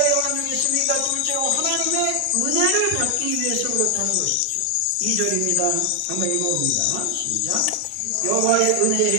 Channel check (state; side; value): different; both; correlation 0.00